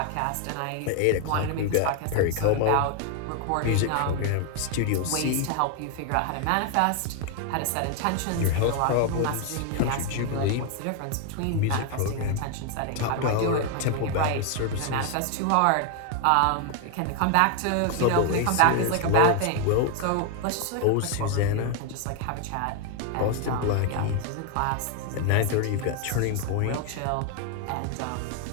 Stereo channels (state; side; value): different; both; correlation 0.01